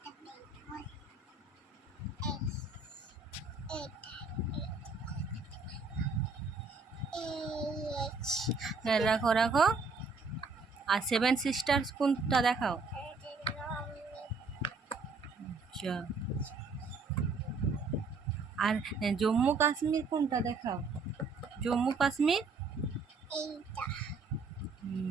রাখো রাখো আর সেভেন সিস্টার্স কোনটা দেখাও আচ্ছা আর জম্মু কাশ্মীর কোনটা দেখাও জম্মু কাশ্মীর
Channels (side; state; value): left; quieter; 4.2 dB